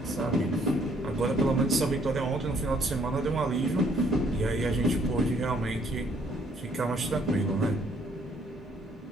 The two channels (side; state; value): both; normal; correlation 0.65